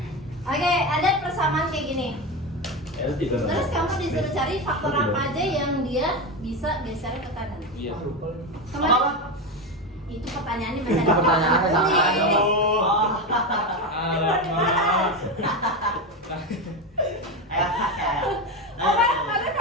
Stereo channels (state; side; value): normal; both; correlation 0.16